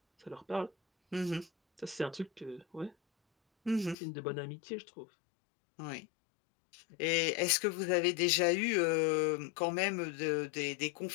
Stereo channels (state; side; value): drops out; right; at 4.0 s